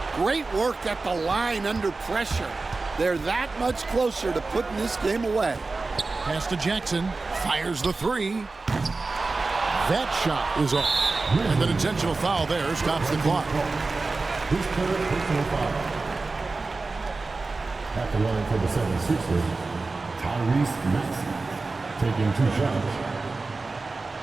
Great work at the line under pressure. They're that much closer to putting this game away. Pass to Jackson, fires the 3. That shot is off, and an intentional foul there stops the clock. His third personal foul. At the line for the 76ers, Tyrese Maxey, taking 2 shots.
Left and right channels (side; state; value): left; quieter; 3.7 dB